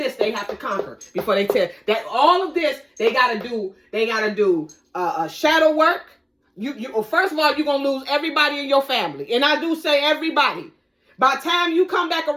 they have to conquer before they tell that. All of this they got to do. They got to do shadow work. Well, first of all, you're going to lose everybody in your family. And I do say everybody. By the time you come back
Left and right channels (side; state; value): both; identical; correlation 1.00